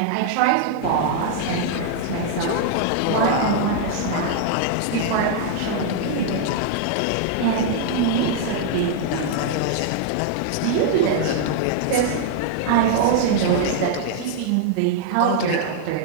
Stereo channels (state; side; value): different; both; correlation -0.01